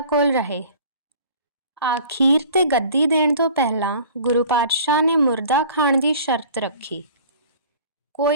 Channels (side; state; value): both; inverted; correlation -0.47